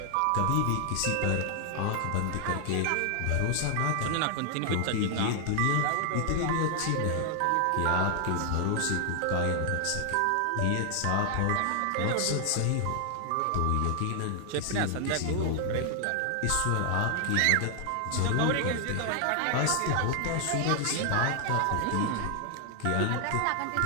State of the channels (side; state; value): both; different; correlation 0.00